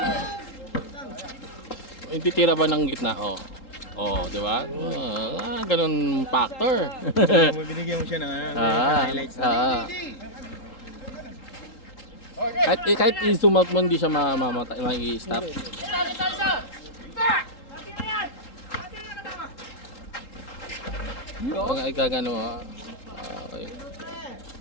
Yung titira ba ng gitna? Di ba? Ganun factor. Binigyan mo siya ng highlights. Kahit i-zoom out mo, hindi siya ma-i-stop. Pag ikagano, okay.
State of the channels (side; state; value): right; late; 3.8 ms